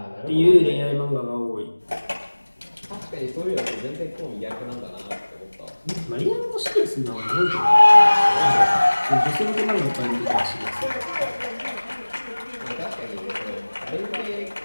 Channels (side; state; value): both; inverted; correlation -1.00